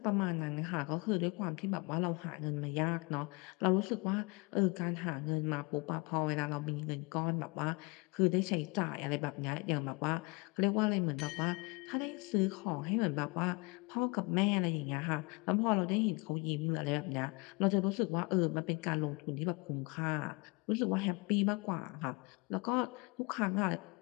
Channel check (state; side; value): quieter; right; 28.4 dB